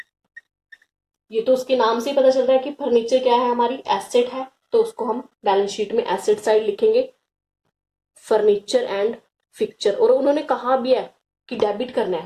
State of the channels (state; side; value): identical; both; correlation 1.00